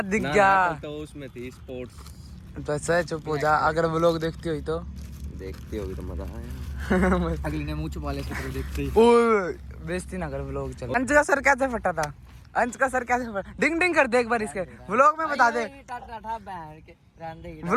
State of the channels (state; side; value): identical; both; correlation 1.00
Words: दिख गया तो उसमें थी स्पोर्ट्स। तो ऐसा चुप हो जा, अगर व्लॉग देखती हुई तो देखती होगी तो मजा आया। अगली ने मुंह छुपा ले तो देखती। ओए बेइज्जती ना कर व्लॉग चल। अंश का सर कैसे फटा था? अंश का सर कैसे फटा? डिंग डिंग कर दे एक बार इसके व्लॉग में बता दे।